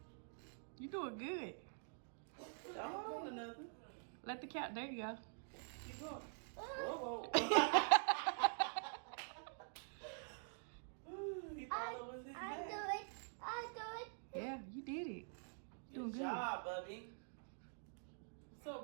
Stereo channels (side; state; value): left; silent; digital silence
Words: You doing good. Don't hold on to nothing. Let the cat. There you go. Keep going. Whoa, whoa. Ooh, he thought it was his I back. do it. I do it. Yeah, you did it. Doing Good good. job, Bubby. I'm so